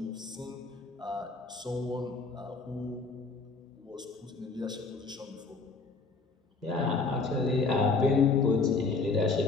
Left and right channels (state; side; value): quieter; right; 4.1 dB